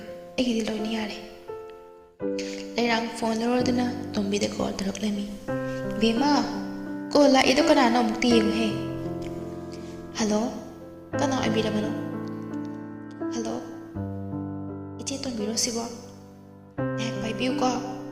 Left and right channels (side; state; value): both; identical; correlation 1.00